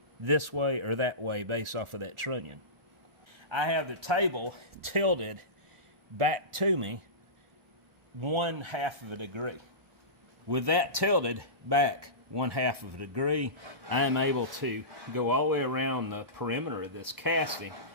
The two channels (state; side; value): late; left; 1.1 ms